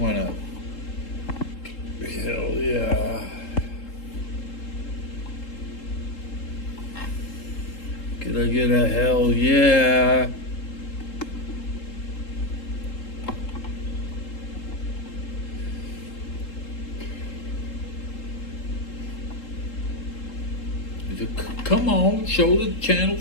up. Hell yeah. Could I get a hell yeah? Come on, show the channel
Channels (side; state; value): right; late; 3.7 ms